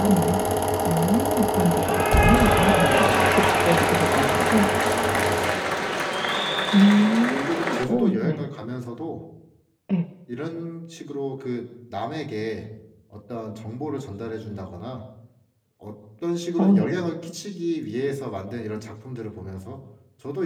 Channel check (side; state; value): both; identical; correlation 1.00